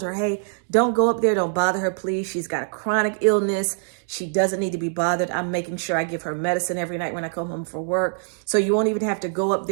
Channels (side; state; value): left; silent; 63 dB below the other